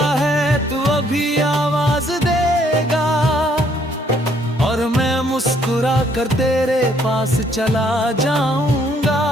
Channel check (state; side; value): normal; both; correlation 0.66